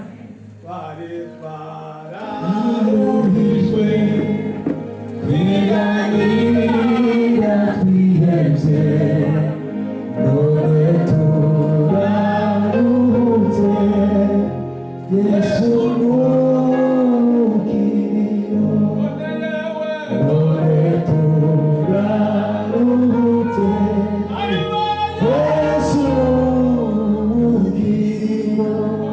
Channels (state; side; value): identical; both; correlation 1.00